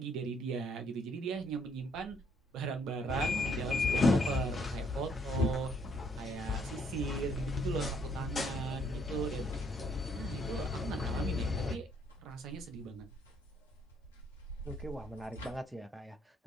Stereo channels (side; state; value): both; normal; correlation 0.67